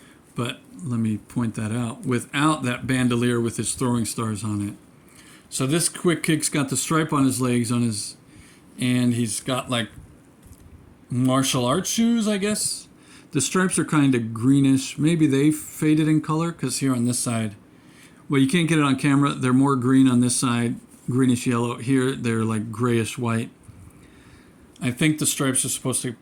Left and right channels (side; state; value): both; identical; correlation 1.00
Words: but let me point that out, without that bandolier with his throwing stars on it. So this quick kick's got the stripe on his legs, and he's got like martial arts shoes, I guess. The stripes are kind of greenish. Maybe they faded in color, because here on this side, well, you can't get it on camera. They're more green on this side, greenish yellow. Here, they're like grayish white. I think the stripes are supposed to